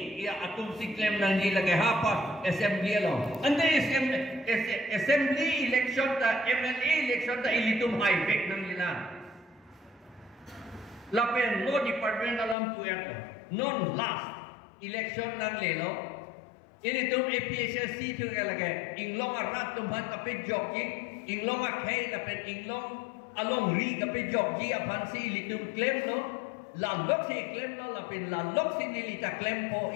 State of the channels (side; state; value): right; drops out; at 12.6 s